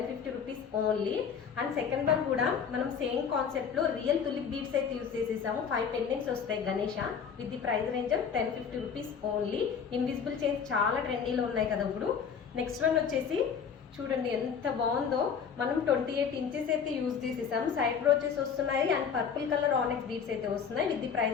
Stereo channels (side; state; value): right; quieter; 6.8 dB